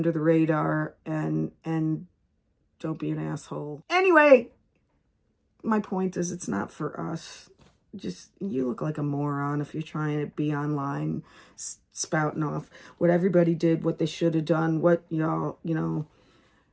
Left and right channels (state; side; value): identical; both; correlation 1.00